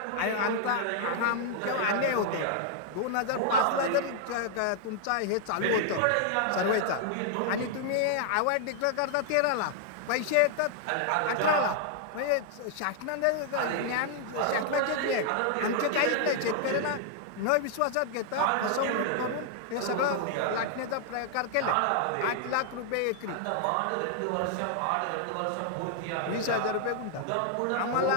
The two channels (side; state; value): both; different; correlation -0.01